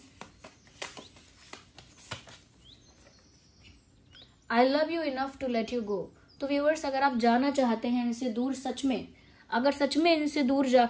I love you enough to let you go. तो व्यूअर्स, अगर आप जाना चाहते हैं इनसे दूर, सच में अगर सच में इनसे दूर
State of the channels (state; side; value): identical; both; correlation 1.00